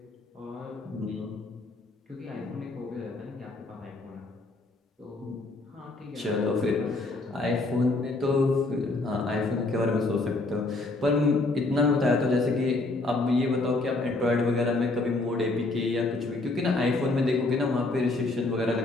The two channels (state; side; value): quieter; right; 3.1 dB